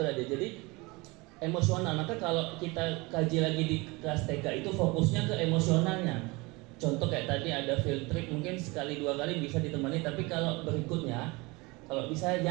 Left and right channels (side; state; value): left; quieter; 24.8 dB